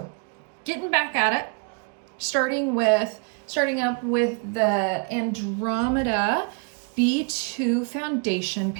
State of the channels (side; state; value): left; quieter; 34.1 dB